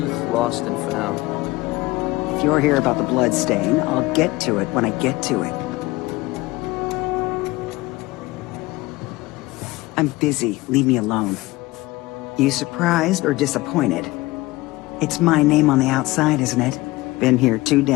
lost and found. If you're here about the blood stain, I'll get to it when I get to it. I'm busy. Leave me alone. You surprised or disappointed? It's my name on the outside, isn't it? Been here too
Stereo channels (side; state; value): right; quieter; 20.4 dB